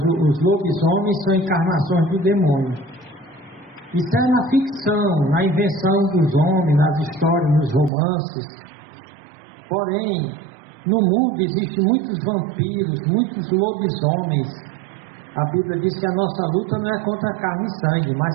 lobisomens são encarnações do demônio. Isso é na ficção, na invenção dos homens, nas histórias, nos romances. Porém, no mundo existem muitos vampiros, muitos lobisomens. A Bíblia diz que a nossa luta não é contra carne e sangue, mas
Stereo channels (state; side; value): drops out; left; at 7.9 s